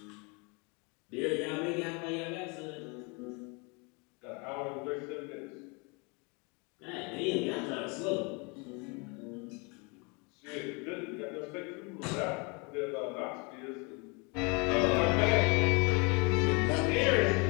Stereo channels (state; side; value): quieter; right; 31.0 dB